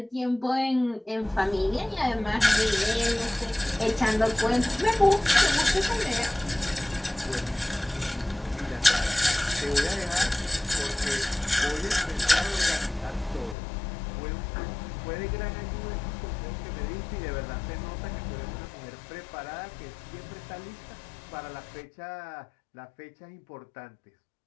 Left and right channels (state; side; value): drops out; right; at 13.6 s